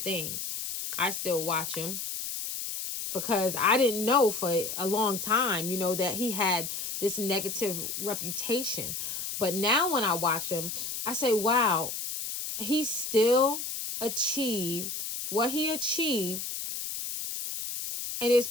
things. I still watch him because I didn't know for a long time, you know, that he had this negative reputation. But now when I watch him, I say, wow, he still achieved what he achieved. And there's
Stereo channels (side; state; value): left; noise; hiss, 5 dB below the sound